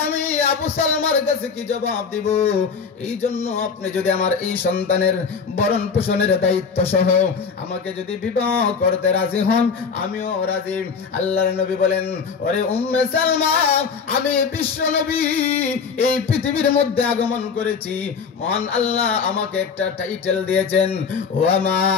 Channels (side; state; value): right; quieter; 5.8 dB